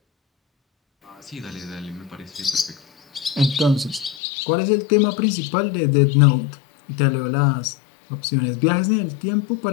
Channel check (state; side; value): drops out; right; at 4.2 s